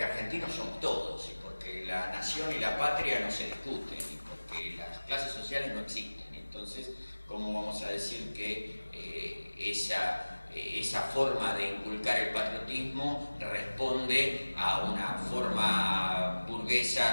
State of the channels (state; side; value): inverted; both; correlation -1.00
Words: argentinos somos todos, y porque la nación y la patria no se discuten, y porque las clases sociales no existen. Entonces, ¿cómo vamos a decir que esa forma de inculcar el patriotismo responde a una forma